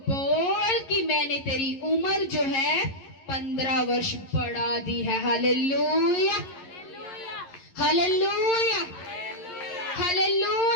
कि मैंने तेरी उम्र जो है 15 वर्ष बढ़ा दी है। Hallelujah, hallelujah,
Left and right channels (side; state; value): right; late; 11 ms